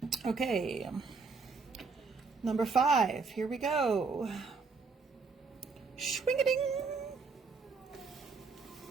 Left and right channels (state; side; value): quieter; left; 4.6 dB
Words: Okay, number 5, here we go. Swing-a-ding.